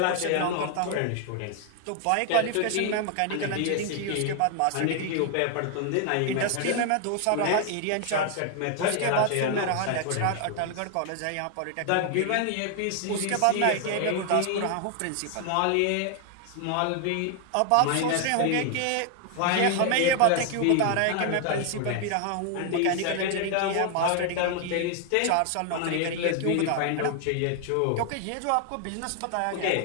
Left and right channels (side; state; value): both; different; correlation 0.00